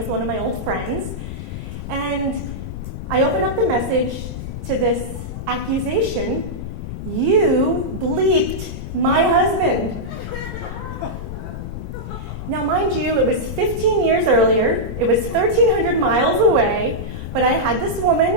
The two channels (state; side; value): noise; left; rumble, 7 dB below the sound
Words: one of my old friends, and I opened up the message to this accusation: "You bleeped my husband." Now, mind you, it was 15 years earlier, it was 1,300 miles away, but I had this